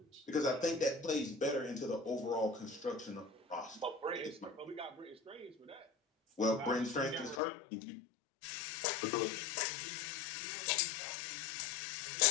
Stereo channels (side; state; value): right; drops out; at 7.4 s